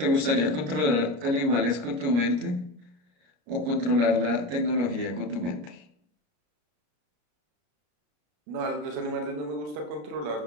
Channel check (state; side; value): late; left; 33 ms